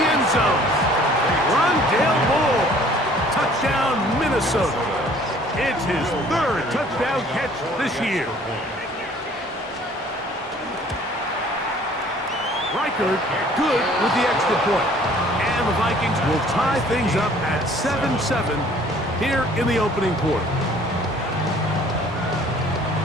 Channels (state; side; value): normal; both; correlation 0.54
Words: end zone. Rondale Moore. Touchdown, Minnesota. It's his 3rd touchdown catch this year. Reichard good with the extra point. And the Vikings will tie things up at 7-7 here in the opening quarter.